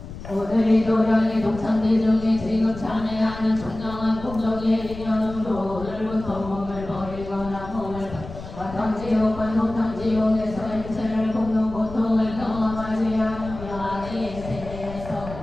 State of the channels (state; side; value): noise; left; rumble, 12 dB below the sound